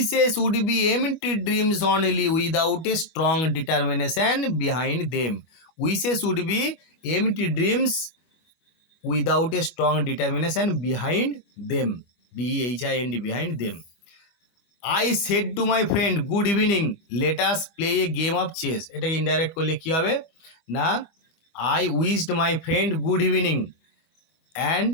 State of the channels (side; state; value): right; late; 25 ms